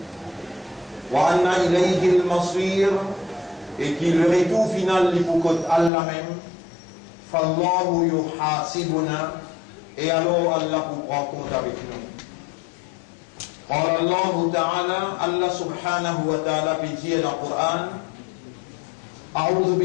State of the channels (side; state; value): right; drops out; at 5.9 s